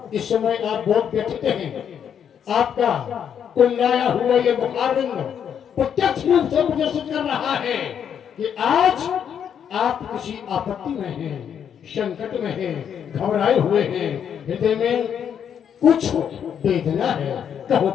इस समय आप बहुत व्यथित हैं। आपका कुंडाया हुआ ये मुखारविंद प्रत्यक्ष रूप से प्रदर्शित कर रहा है कि आज आप किसी आपत्ति में हैं, संकट में हैं, घबराए हुए हैं, हृदय में कुछ वेदना है। कहो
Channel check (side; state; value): right; quieter; 8.3 dB